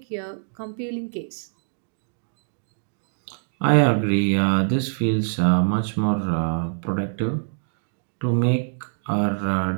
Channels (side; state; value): left; silent; digital silence